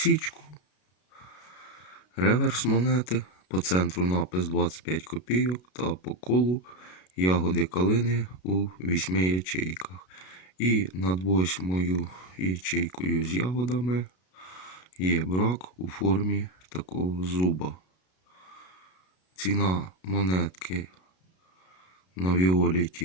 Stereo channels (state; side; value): late; right; 33 ms